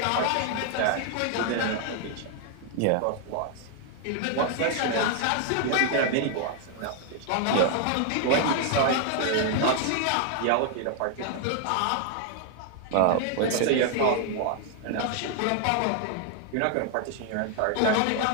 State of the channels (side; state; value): both; different; correlation 0.00